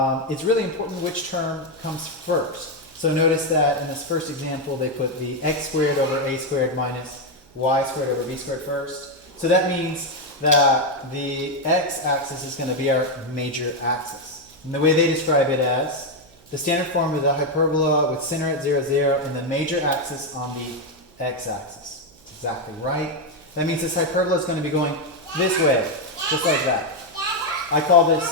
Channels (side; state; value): right; noise; hum, 29 dB below the sound